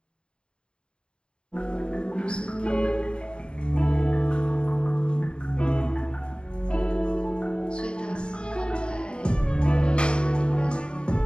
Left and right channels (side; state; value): right; late; 0.052 ms